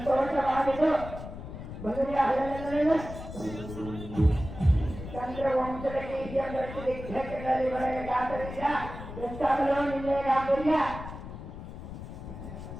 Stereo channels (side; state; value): left; noise; rumble, 10 dB below the sound